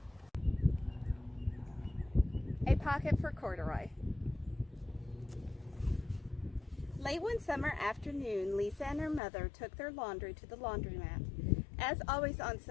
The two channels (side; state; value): right; drops out; at 9.2 s